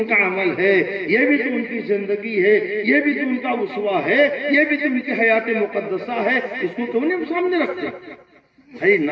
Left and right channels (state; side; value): identical; both; correlation 1.00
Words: کا عمل ہے، یہ بھی تو ان کی زندگی ہے، یہ بھی تو ان کا اسوہ ہے، یہ بھی تو ان کی حیات مقدسہ ہے، اس کو کیوں نہیں سامنے رکھتے؟ خالی